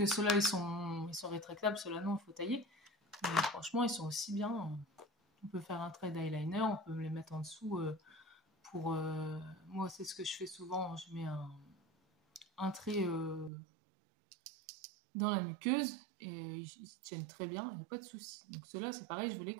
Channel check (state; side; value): drops out; left; at 13.5 s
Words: ceux-là, ils sont rétractables. Ceux-là, non, il faut tailler. Mais franchement, ils sont aussi bien. On peut faire un trait d'eyeliner, on peut les mettre en dessous moi, c'est ce que je fais souvent. Je mets un trait dans la muqueuse et ils tiennent très bien, il n'y a pas de souci. Donc ceux-là, c'est pareil, je vous les